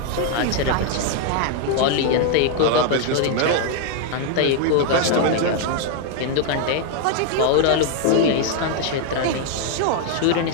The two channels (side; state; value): both; different; correlation 0.00